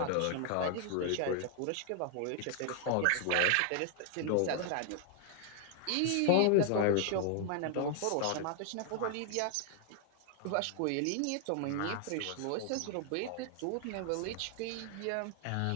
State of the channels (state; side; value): different; both; correlation 0.00